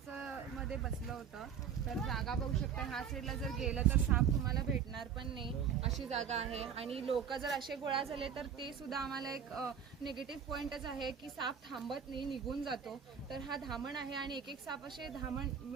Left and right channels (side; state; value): left; quieter; 7.6 dB